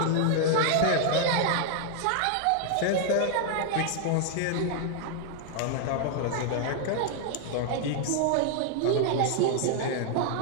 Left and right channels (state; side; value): different; both; correlation 0.00